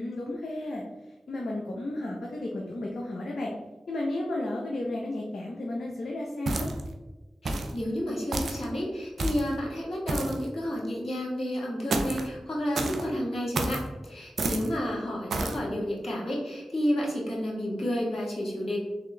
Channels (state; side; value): normal; both; correlation 0.92